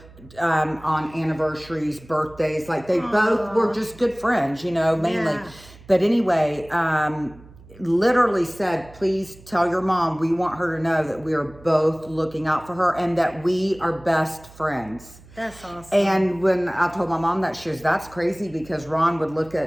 on anniversaries, birthdays. Like they both were just good friends, you know, mainly. Yeah. But anyway, literally said, please tell your mom we want her to know that we are both looking out for her and that we are best friends. That's awesome. And when I told my mom that, she was, that's crazy, because Ron would look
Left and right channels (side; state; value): right; noise; hum, 22 dB below the sound